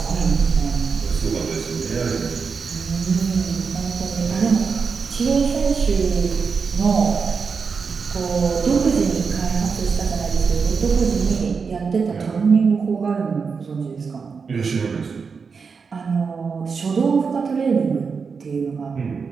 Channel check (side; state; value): left; quieter; 5.4 dB